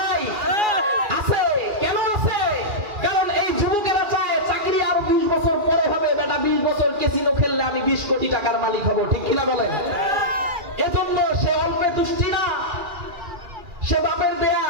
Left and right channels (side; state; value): left; late; 2.4 ms